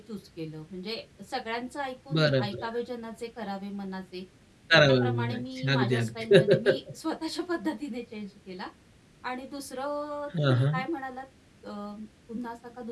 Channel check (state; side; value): identical; both; correlation 1.00